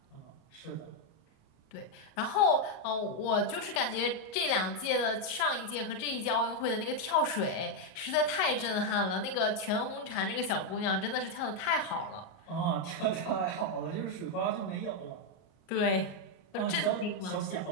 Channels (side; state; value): right; late; 38 ms